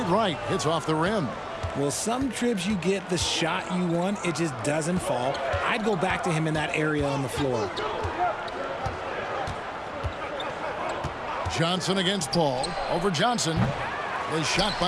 right. Hits off the rim. Well, some trips you get the shot you want, it just doesn't fall. I'd go back to him in that area on the floor. Johnson against Paul. Over Johnson. The shot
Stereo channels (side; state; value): both; identical; correlation 1.00